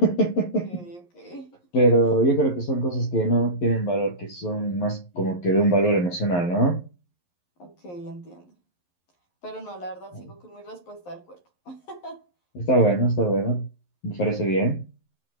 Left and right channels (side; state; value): right; late; 11 ms